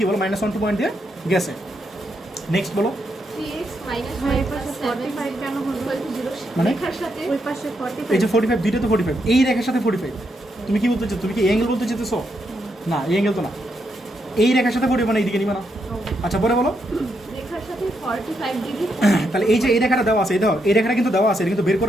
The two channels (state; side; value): normal; both; correlation 0.80